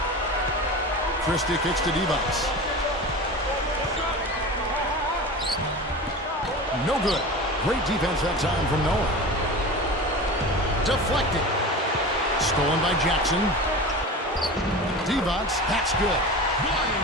Christie kicks to Divac. No good. Great defense that time from Noah. Deflected. Stolen by Jackson. Divac, that's good.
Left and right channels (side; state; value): both; normal; correlation 0.31